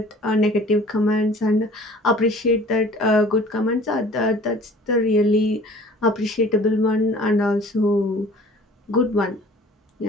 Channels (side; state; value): both; normal; correlation 0.49